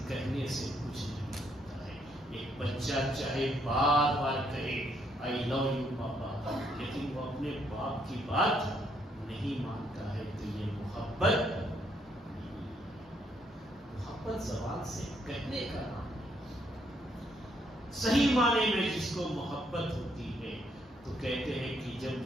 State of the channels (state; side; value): normal; both; correlation 0.72